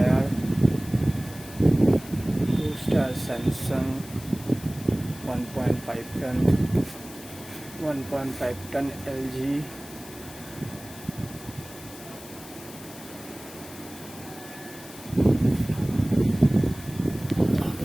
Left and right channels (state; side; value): noise; left; hiss, 17 dB below the sound